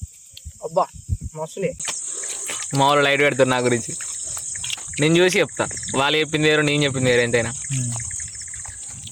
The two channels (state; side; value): identical; both; correlation 1.00